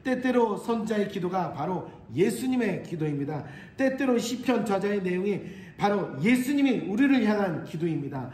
때때로 선자의 기도가 바로 예수님의 기도입니다. 때때로 시편 저자의 내용이 바로 예수님이 우리를 향한 기도입니다.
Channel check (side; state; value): both; identical; correlation 1.00